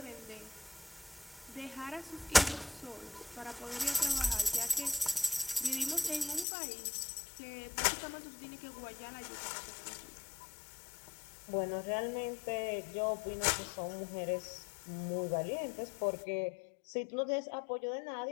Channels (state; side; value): drops out; right; at 6.5 s